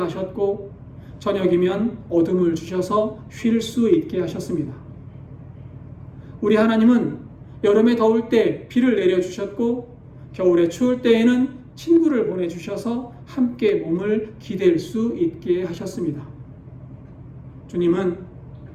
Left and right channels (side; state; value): both; identical; correlation 1.00